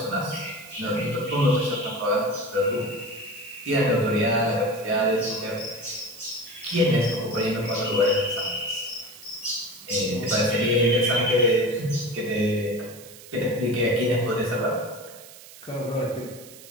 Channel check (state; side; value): noise; right; hiss, 18 dB below the sound